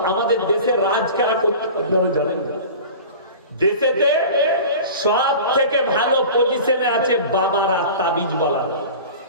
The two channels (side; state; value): both; inverted; correlation -0.37